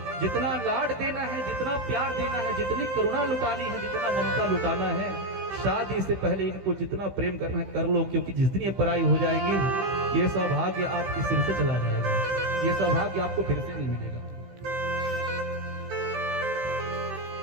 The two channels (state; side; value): late; left; 15 ms